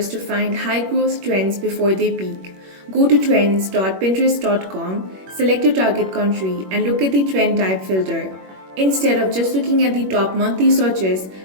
to find high growth trends before they peak. Go to trends.pinterest.com, select your target country, and look at the trend type filter. Instead of just looking at the top monthly searches,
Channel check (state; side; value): late; left; 21 ms